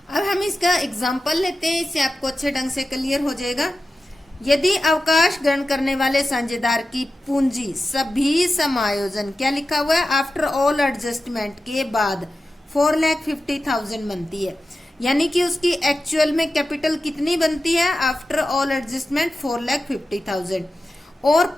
अब हम इसका एग्जाम्पल लेते हैं, इससे आपको अच्छे ढंग से क्लियर हो जाएगा। यदि अवकाश ग्रहण करने वाले साझेदार की पूंजी सभी समायोजन, क्या लिखा हुआ है, आफ्टर ऑल एडजस्टमेंट के बाद 4,50,000 बनती है, यानी कि उसकी एक्चुअल में कैपिटल कितनी बनती है आफ्टर ऑल एडजस्टमेंट 4,50,000 और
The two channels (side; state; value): both; normal; correlation 0.93